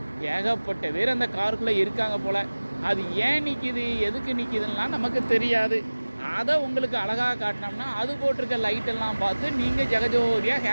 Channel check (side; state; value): both; inverted; correlation -1.00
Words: ஏகப்பட்ட பேர் அந்த காருக்குள்ளே இருக்காங்க போல். அது ஏன் நிற்கிது, எதுக்கு நிற்கிதுன்னா நமக்கு தெரியாது. அதை உங்களுக்கு அழகாக காட்டினோம்னா அது போட்டிருக்க லைட்டெல்லாம் பார்த்து நீங்கள் ஜெகஜோதியாக